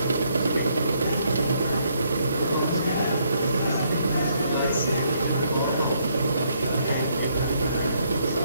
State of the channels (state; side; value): inverted; both; correlation -0.71